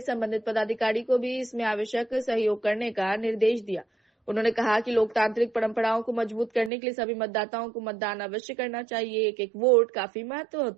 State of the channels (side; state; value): left; drops out; at 6.7 s